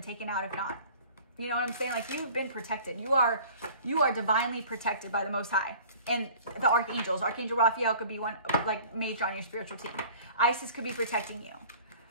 taken out if not. You know what I'm saying? Like, you've been protected. You are divinely protected by the Most High. And the archangels. Archangel Raphael could be one, like, major on your spiritual team. Isis could be protecting you.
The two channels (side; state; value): both; inverted; correlation -0.47